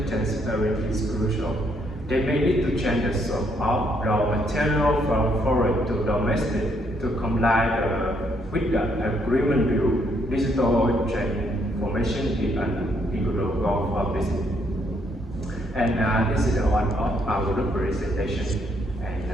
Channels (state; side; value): normal; both; correlation 0.72